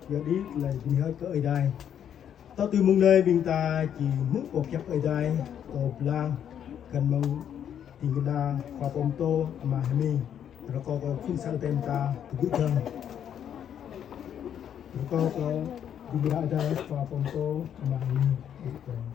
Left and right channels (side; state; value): right; quieter; 9.3 dB